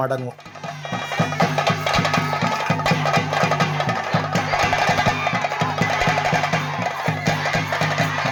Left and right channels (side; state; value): both; identical; correlation 1.00